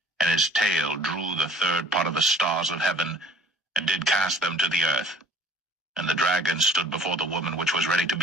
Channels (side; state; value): both; normal; correlation 0.51